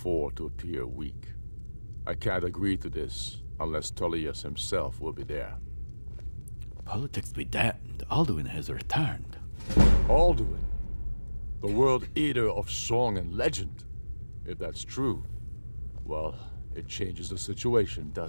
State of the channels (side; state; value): both; inverted; correlation -1.00